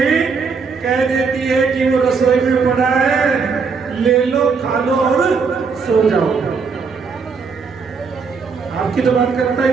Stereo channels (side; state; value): left; quieter; 5.2 dB